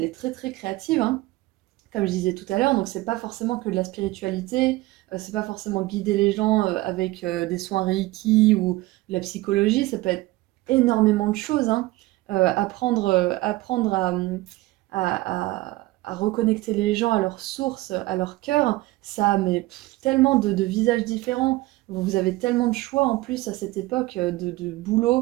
est très très créative, hein, comme je disais tout à l'heure, donc c'est pas forcément que de la spiritualité, c'est pas forcément guider les gens avec des soins Reiki ou de la psychologie, ça peut être énormément de choses, hein. Apprendre à reconnecter les gens à leur source, à leur cœur, ça mais tellement de visages différents. Vous avez tellement de choix en plus à cette époque de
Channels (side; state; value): left; quieter; 19.1 dB